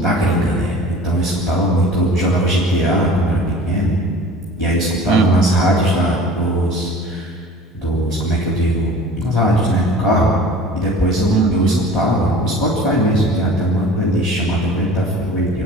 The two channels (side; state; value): both; normal; correlation 0.43